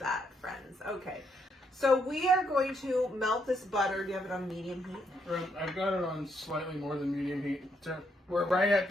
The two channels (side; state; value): both; normal; correlation 0.75